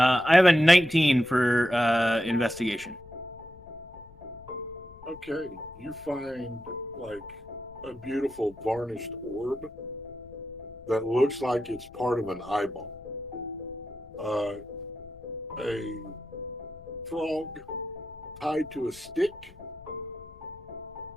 have a 19 for investigation. Okay. You find like a beautiful varnished orb that looks like it's part of an eyeball. A frog tied to a stick.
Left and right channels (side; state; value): left; noise; rumble, 22 dB below the sound